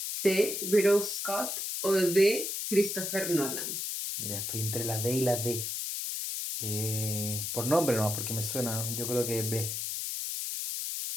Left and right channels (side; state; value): left; noise; hiss, 3 dB below the sound